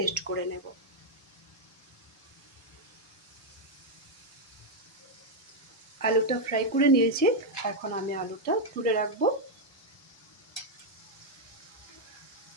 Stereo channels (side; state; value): both; normal; correlation 0.00